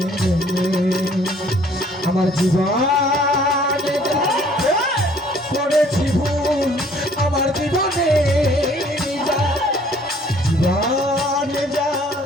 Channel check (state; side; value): normal; both; correlation 0.58